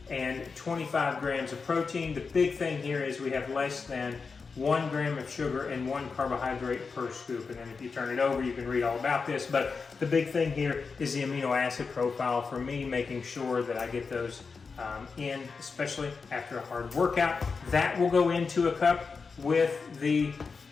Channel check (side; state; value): right; quieter; 4.9 dB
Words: and 25 grams of protein. The big thing here is we have less than 1 gram of sugar and 1 carbohydrate per scoop. And then if you turn it over, you can read all about this. But the big thing here is the amino acid profile for me, making sure that I get those in, especially after a hard workout. That will go into a cup with the